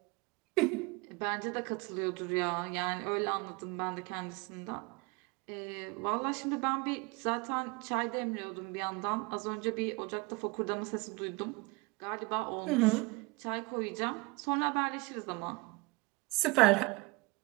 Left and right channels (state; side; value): quieter; left; 26.1 dB